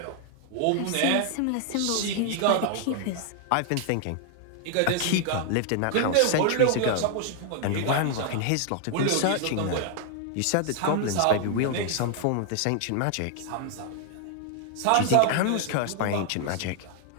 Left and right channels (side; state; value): both; different; correlation 0.00